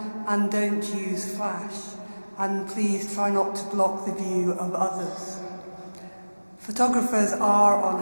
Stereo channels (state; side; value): inverted; both; correlation -1.00